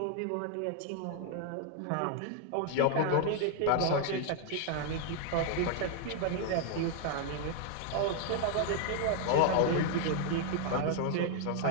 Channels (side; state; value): both; different; correlation 0.00